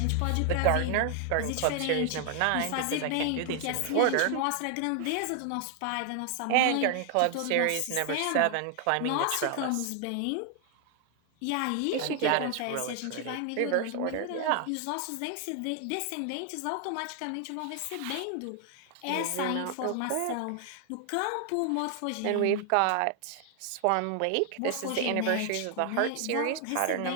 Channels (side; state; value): both; different; correlation 0.00